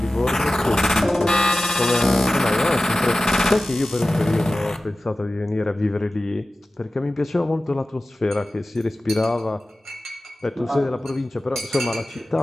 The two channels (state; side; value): normal; both; correlation 0.96